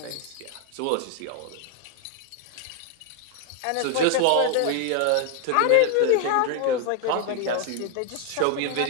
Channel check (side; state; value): both; different; correlation 0.00